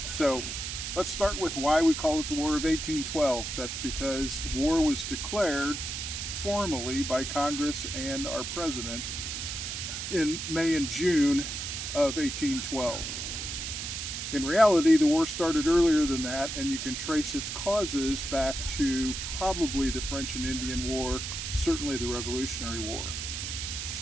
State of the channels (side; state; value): right; noise; hiss, 5 dB below the sound